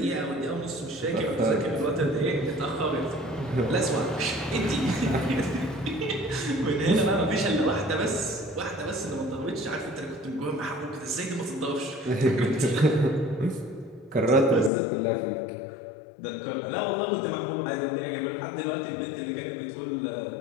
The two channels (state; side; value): drops out; right; at 14.7 s